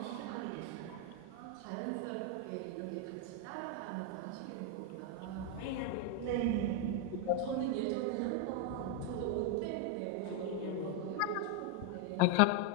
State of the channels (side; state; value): both; different; correlation 0.01